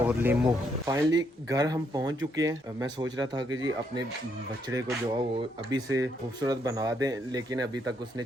नींबू। फाइनली घर हम पहुंच चुके हैं। मैं सोच रहा था कि जी अपने बछड़े को जो है वो अभी से खूबसूरत बना दें, लेकिन अभी तक उसने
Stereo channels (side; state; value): both; normal; correlation 0.74